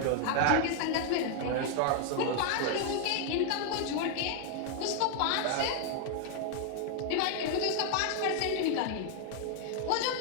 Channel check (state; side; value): different; both; correlation 0.00